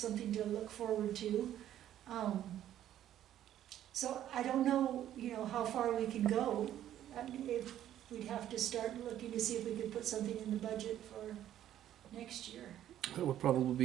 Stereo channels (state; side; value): quieter; left; 11.7 dB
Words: to look forward to. So I don't know, you know, how far we can go. I mean, if we'd have to start looking to see if we could put something in the budget for next year. That would probably